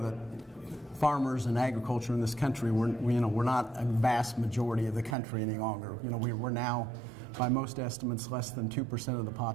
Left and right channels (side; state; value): left; drops out; at 5.2 s